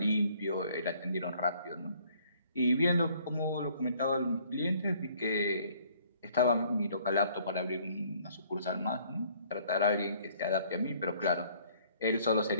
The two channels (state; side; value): inverted; both; correlation -0.60